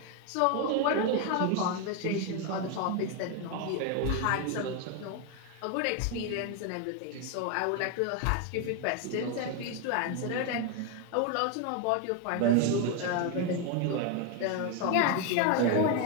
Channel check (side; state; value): both; different; correlation 0.01